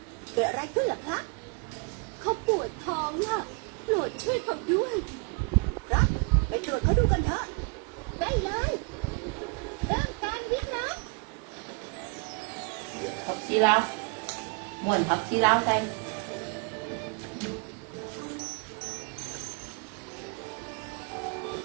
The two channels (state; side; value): quieter; left; 36.1 dB